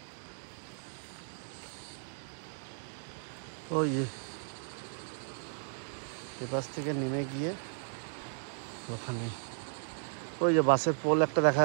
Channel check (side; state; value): left; silent; digital silence